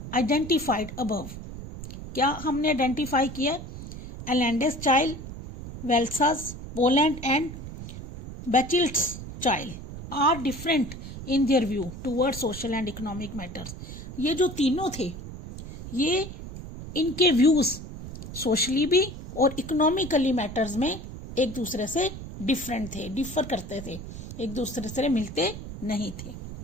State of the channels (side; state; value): right; noise; rumble, 11 dB below the sound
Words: identified above, क्या हमने आइडेंटिफाई किया? Allende's Chile, Walesa's, Poland and Bachelet's Chile are different in their view toward social and economic matters. ये जो तीनों थे, ये इनके व्यूज सोशली भी और इकोनॉमिकली मैटर्स में एक दूसरे से डिफरेंट थे, डिफर करते थे, एक दूसरे से मिलते नहीं थे।